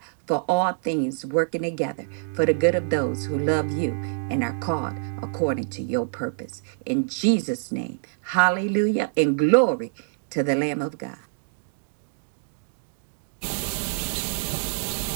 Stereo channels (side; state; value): left; silent; digital silence